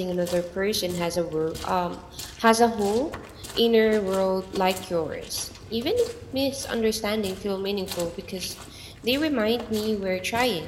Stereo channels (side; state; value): both; identical; correlation 1.00